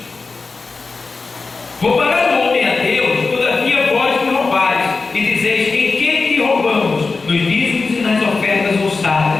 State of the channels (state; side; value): quieter; right; 4.1 dB